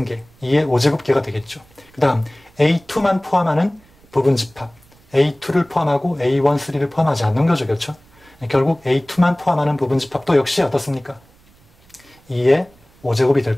2의 5제곱계가 되겠죠. 그 다음 A2만 포함하는 부분집합, A2를 포함하고 A1, 3를 포함하지 않는 거죠. 그렇죠? 결국 A2만 포함하는 부분집합도 역시 어떻습니까? 2의 5제곱이 될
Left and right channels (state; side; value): noise; right; rumble, 30 dB below the sound